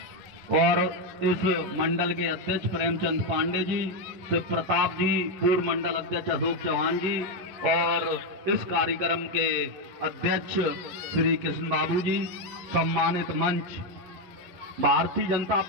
और इस मंडल के अध्यक्ष प्रेमचंद पांडे जी, शिव प्रताप जी, पूर्व मंडल अध्यक्ष अशोक चौहान जी, और इस कार्यक्रम के अध्यक्ष श्री कृष्ण बाबू जी। सम्मानित मंच, भारतीय जनता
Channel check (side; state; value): left; late; 11 ms